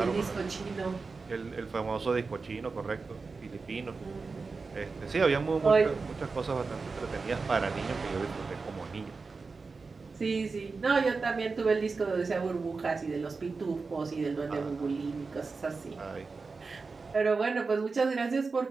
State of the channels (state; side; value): quieter; left; 4.3 dB